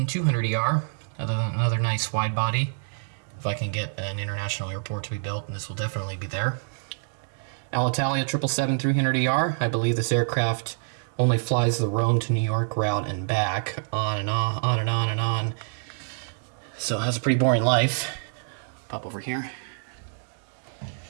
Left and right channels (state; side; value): silent; left; digital silence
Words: another nice wide body. If I can get an international airport to be built, and this will definitely be there. Alitalia 777-300ER. I believe this aircraft only flies the Rome to New York route and back, on and on and on and on. So it has a pretty boring life. Pop over here.